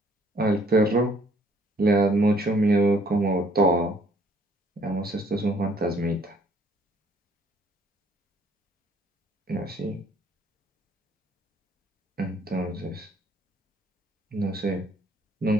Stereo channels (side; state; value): both; normal; correlation 0.62